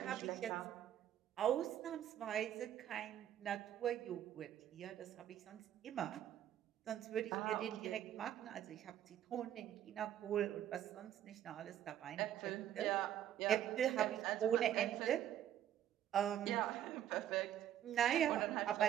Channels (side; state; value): left; quieter; 11.0 dB